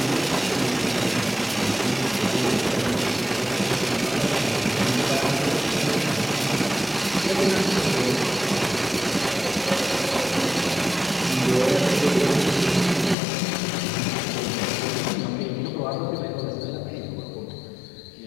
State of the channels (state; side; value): drops out; right; at 13.2 s